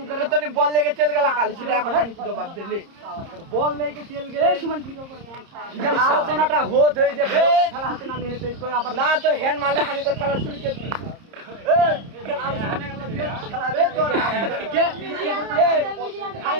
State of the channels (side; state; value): left; late; 30 ms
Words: করে তো নি বল লেগে চল গেল কাল সেটা এখন জানি কি জবাব দিলি বল লেগে চল গেলে এই সুমন ভিডিও করে আলোচনাটা হত হই যে খেলা হাতে না নিয়ে তো আবার না তো হ্যান্ড মারলে আমি তো খেলা শুরু করে দিই